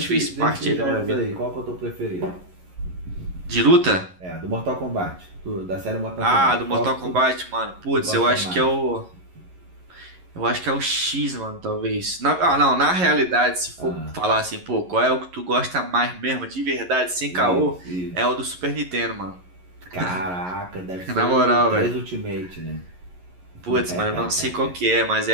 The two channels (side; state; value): left; late; 11 ms